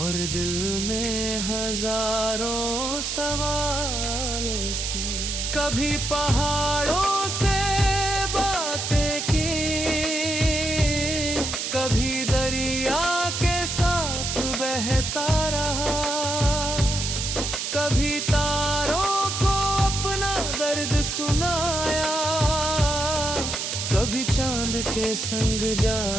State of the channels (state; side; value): noise; right; hiss, 3 dB below the sound